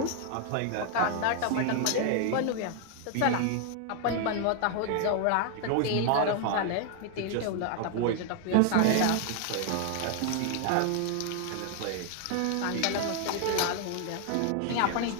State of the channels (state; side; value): different; both; correlation 0.00